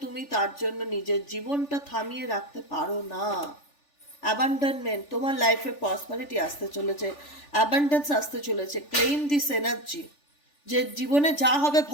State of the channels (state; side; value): late; right; 3.4 ms